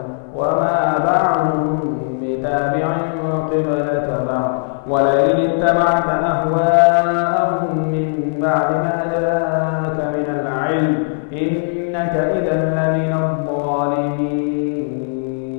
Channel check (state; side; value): silent; right; 58 dB below the other